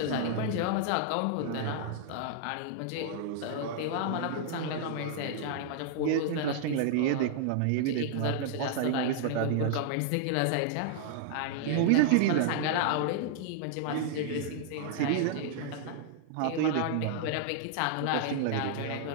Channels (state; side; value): different; both; correlation -0.01